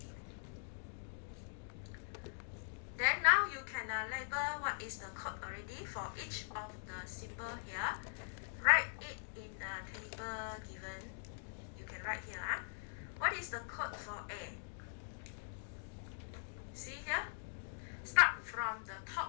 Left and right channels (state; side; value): silent; right; digital silence